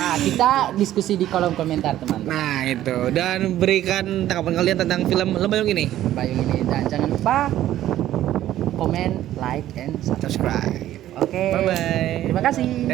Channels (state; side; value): quieter; left; 13.1 dB